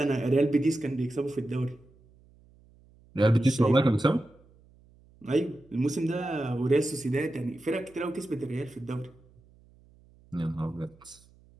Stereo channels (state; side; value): noise; right; hum, 28 dB below the sound